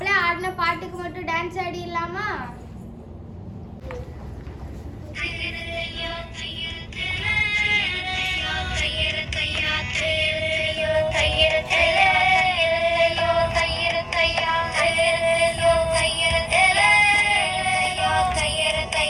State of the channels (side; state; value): both; identical; correlation 1.00